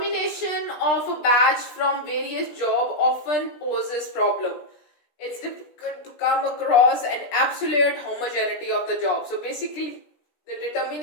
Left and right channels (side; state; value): right; late; 17 ms